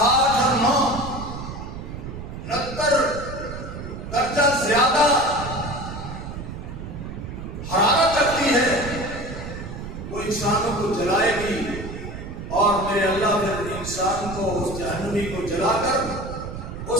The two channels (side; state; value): right; noise; rumble, 9 dB below the sound